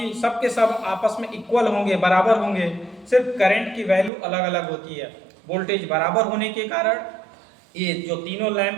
सब के सब आपस में इक्वल होंगे, बराबर होंगे। सिर्फ करंट की वैल्यू अलग अलग होती है। वोल्टेज बराबर होने के कारण ये जो तीनों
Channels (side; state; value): left; drops out; at 4.1 s